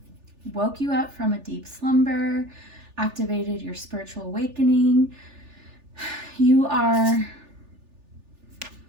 woke you up from a deep slumber, activated your spiritual awakening. You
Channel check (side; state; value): left; late; 3.4 ms